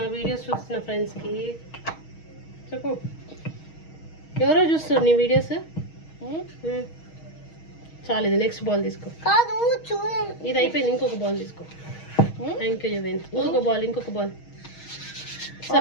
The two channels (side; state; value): right; late; 6.3 ms